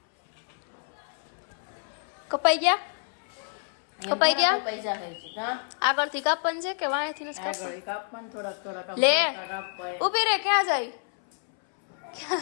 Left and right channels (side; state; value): right; silent; 59 dB below the other